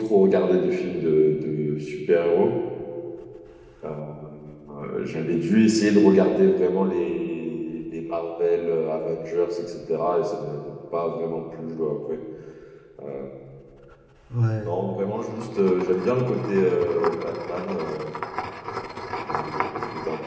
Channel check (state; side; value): identical; both; correlation 1.00